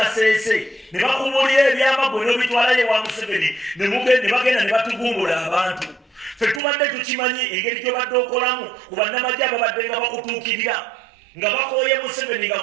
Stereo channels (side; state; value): left; drops out; at 6.6 s